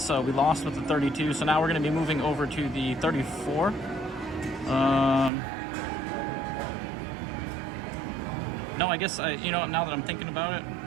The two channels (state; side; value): drops out; left; at 5.3 s